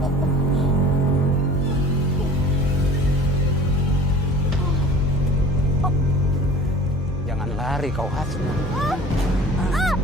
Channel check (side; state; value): both; normal; correlation 0.44